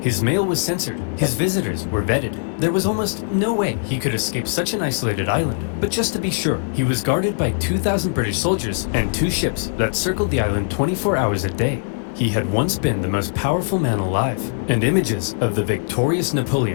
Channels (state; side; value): silent; right; digital silence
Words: His mail was censored, his visitors were vetted. There was almost no way he could escape such an isolated island. But just to be sure, he was guarded by 2,000 British soldiers and 2 ships that circled the island 24 hours a day. He had once been the most powerful man alive, and images of the victorious